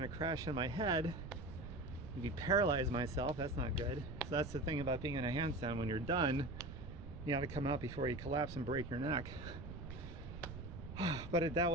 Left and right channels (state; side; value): noise; right; rumble, 10 dB below the sound